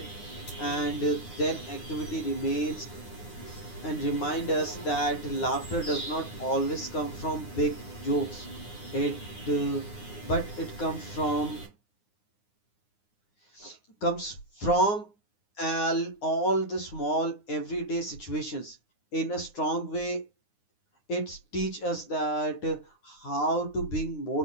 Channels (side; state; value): right; late; 9.7 ms